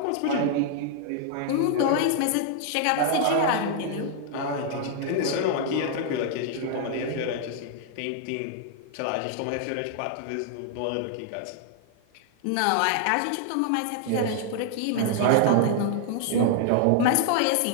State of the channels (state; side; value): different; both; correlation 0.00